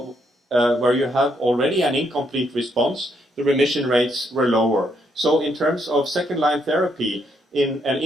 where you have already an incomplete response, the remission rates were lower. So in terms of second-line therapy, in an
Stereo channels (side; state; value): both; normal; correlation 0.74